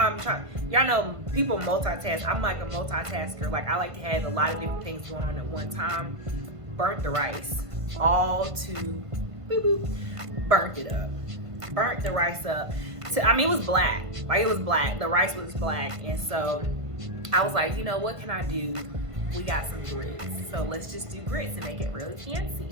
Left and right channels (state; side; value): late; left; 1.5 ms